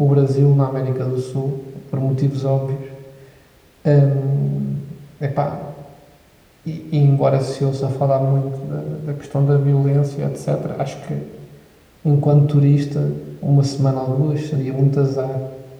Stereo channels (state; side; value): identical; both; correlation 1.00